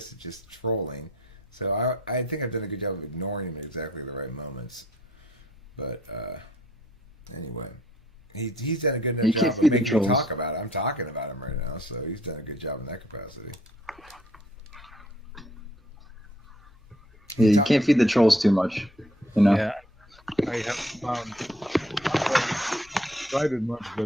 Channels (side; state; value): both; normal; correlation 0.63